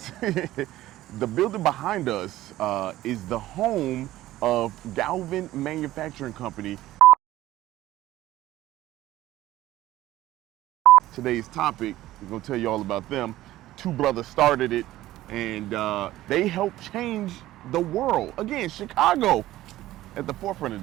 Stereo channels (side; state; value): left; quieter; 15.3 dB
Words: The building behind us is the home of Galvin Manufacturing Company. Today's topic, we're gonna tell you all about them. Two brothers started it, and they helped change the world. Again, Chicago at the forefront of